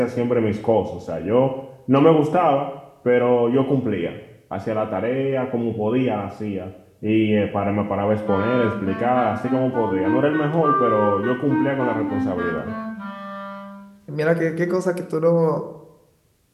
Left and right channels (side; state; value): both; identical; correlation 1.00